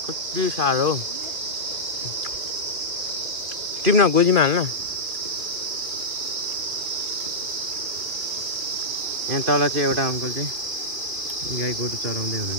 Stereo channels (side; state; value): left; late; 2.3 ms